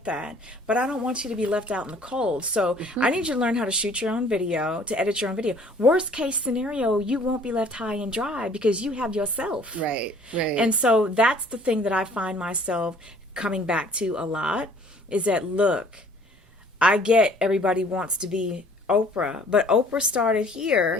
that. But I don't want you to be left out in the cold. So I need you to learn how to shoot your own video, to edit your own video. Worst case scenario, you won't be left high and dry because you have yourself. Right. And so that's the thing that I find myself coming back to a lot, is that, look, I get everybody wants to be Oprah, but Oprah started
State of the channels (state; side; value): normal; both; correlation 0.55